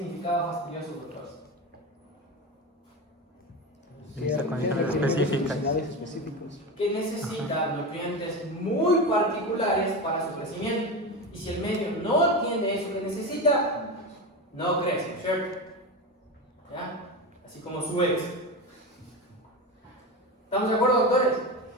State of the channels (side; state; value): both; normal; correlation 0.21